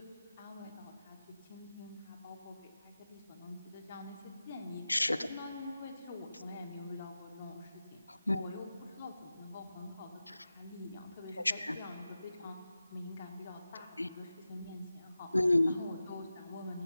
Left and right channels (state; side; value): inverted; both; correlation -0.94